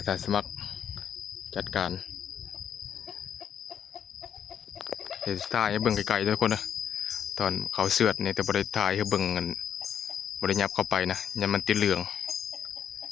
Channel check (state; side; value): quieter; right; 8.8 dB